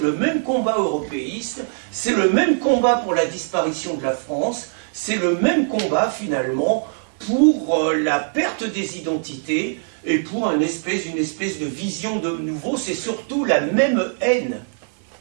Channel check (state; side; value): silent; left; digital silence